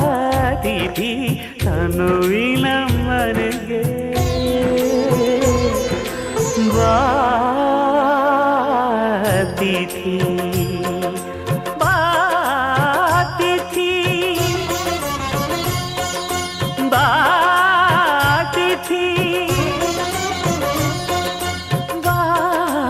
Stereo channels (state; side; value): identical; both; correlation 1.00